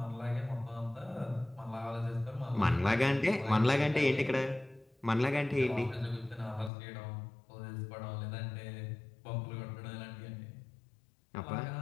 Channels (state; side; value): drops out; right; at 6.7 s